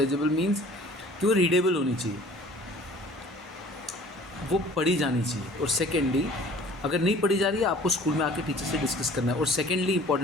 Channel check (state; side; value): normal; both; correlation 0.49